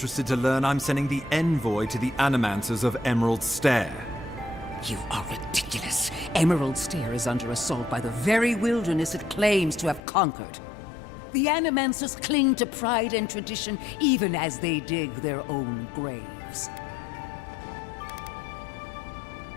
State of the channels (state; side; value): drops out; right; at 10.0 s